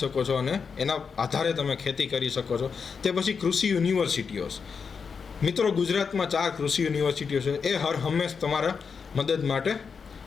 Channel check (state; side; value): quieter; right; 5.8 dB